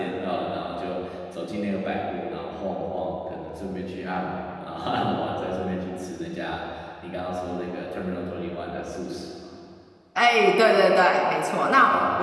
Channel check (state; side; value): identical; both; correlation 1.00